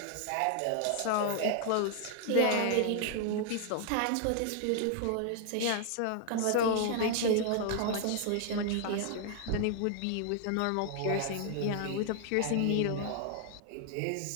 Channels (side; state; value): both; different; correlation 0.00